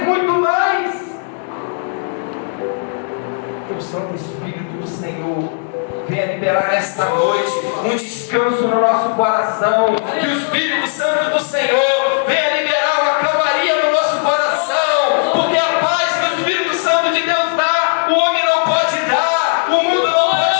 muito mais. Que o Santo Espírito do Senhor venha liberar nesta noite um descanso no nosso coração. Que o Espírito Santo do Senhor venha liberar uma calmaria no nosso coração, porque a paz que o Espírito Santo de Deus dá, o homem não pode dar, o mundo não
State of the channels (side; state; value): right; silent; digital silence